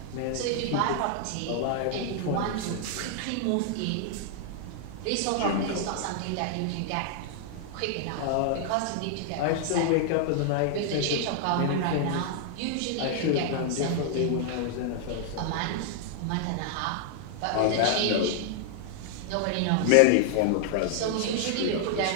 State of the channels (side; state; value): both; different; correlation -0.01